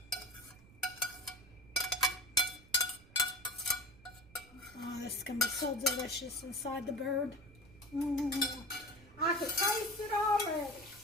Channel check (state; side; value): noise; right; rumble, 23 dB below the sound